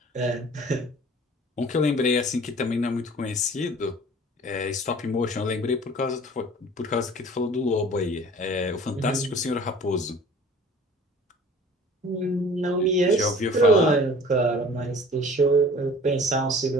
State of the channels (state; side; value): normal; both; correlation 0.46